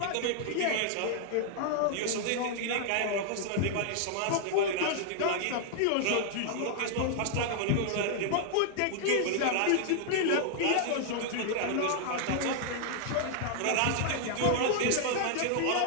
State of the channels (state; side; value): different; both; correlation -0.01